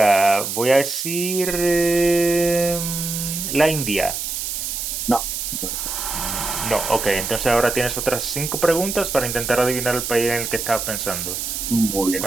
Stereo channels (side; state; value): right; noise; hiss, 4 dB below the sound